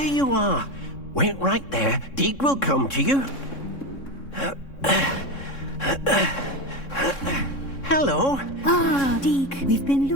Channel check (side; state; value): right; late; 3.6 ms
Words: you are. Wait right there. Deke will come to you. Hello. Ah, Deke, we've been